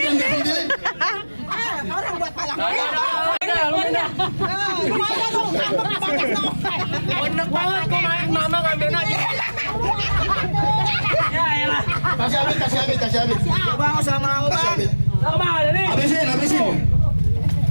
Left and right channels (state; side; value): inverted; both; correlation -1.00